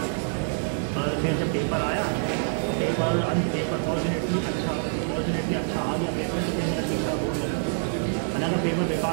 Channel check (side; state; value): left; silent; 61 dB below the other